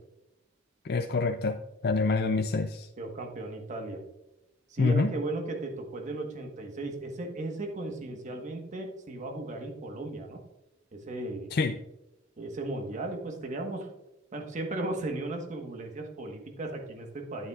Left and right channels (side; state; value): both; normal; correlation 0.49